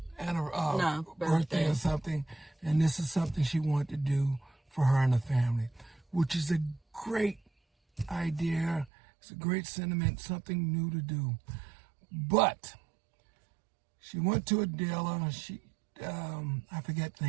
birthday or something, and this is something she wanted to do for her and the family, which is a great idea. It's a great sentiment, something new to do. But she went to a dealer. I forget the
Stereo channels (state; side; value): drops out; left; at 8.9 s